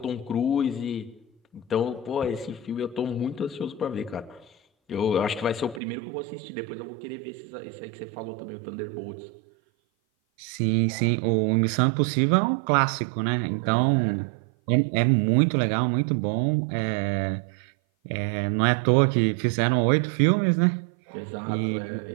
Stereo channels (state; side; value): drops out; left; at 5.8 s